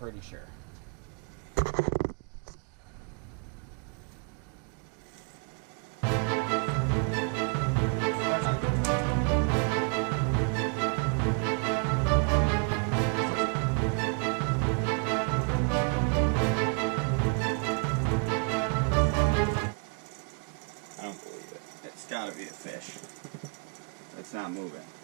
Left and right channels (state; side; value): quieter; left; 36.1 dB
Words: sure. Gotta be a fish. It's not moving.